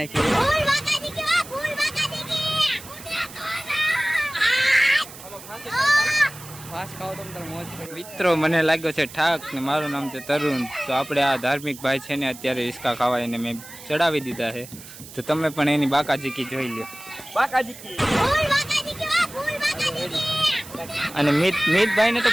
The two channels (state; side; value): noise; right; hiss, 16 dB below the sound